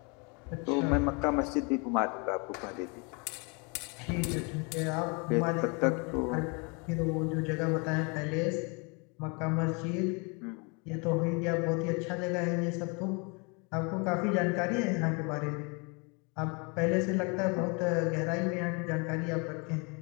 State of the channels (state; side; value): quieter; right; 32.1 dB